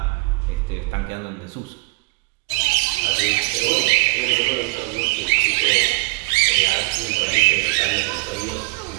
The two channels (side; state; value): left; quieter; 26.5 dB